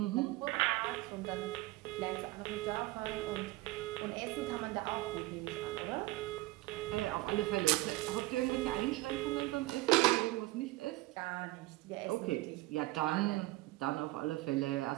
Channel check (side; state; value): left; quieter; 19.6 dB